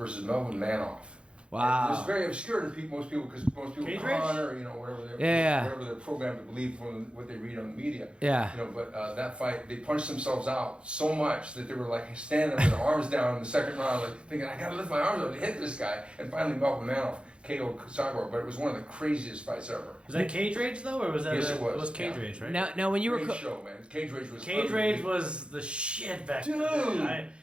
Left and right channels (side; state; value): left; late; 0.057 ms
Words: Melvin Manoff. Wow. It was very obscure to most people because most people honor, whatever they're programmed to believe from what they read on the media. Yeah. But that fight, they punched themselves out so much that they were like standing with their arms down in the second round, like thinking, I gotta lift my arms up to hit this guy. And finally, Melvin Manoff KO'd Cyborg, but it was one of the craziest fights ever. Was that Cage Rage though, or was that? Yes, it was. It was Cage Rage, right? Now when you were Great show, man. Cage Rage was. Cage Rage was the shit back then. Dude,